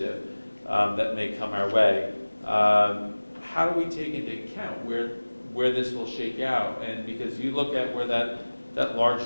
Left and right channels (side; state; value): both; inverted; correlation -1.00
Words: that may come our way, how do we take into account where this will shake out? And because you look at where that